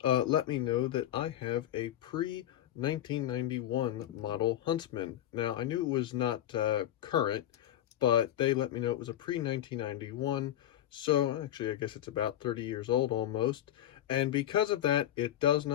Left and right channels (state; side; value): quieter; right; 12.1 dB